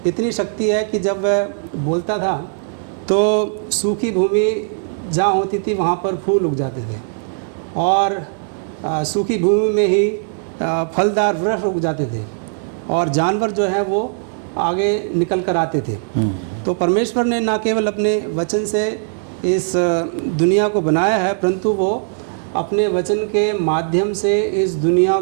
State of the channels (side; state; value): left; silent; 67 dB below the other